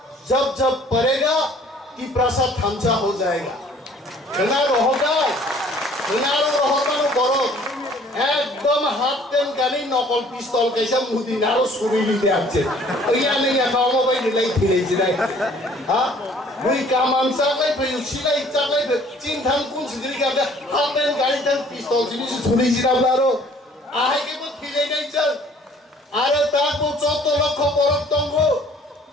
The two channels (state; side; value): normal; both; correlation 0.55